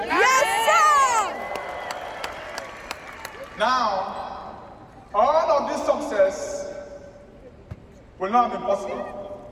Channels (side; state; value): both; identical; correlation 1.00